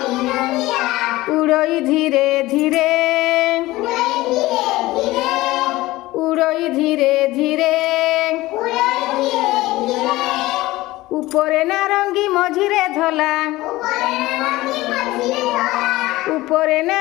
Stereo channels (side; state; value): right; quieter; 18.4 dB